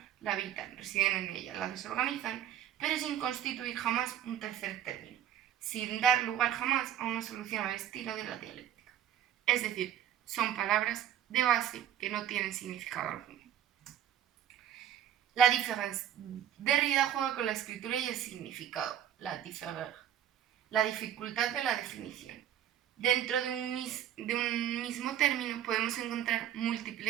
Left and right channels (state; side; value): quieter; left; 10.6 dB